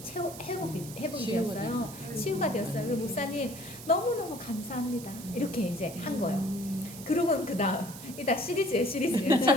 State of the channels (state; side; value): noise; right; hiss, 14 dB below the sound